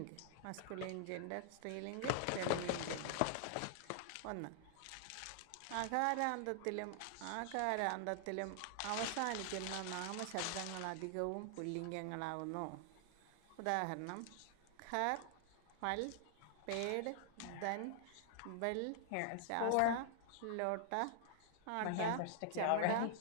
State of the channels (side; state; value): both; different; correlation -0.01